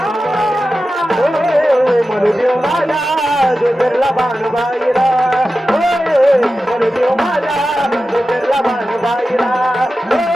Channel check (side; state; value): both; normal; correlation 0.93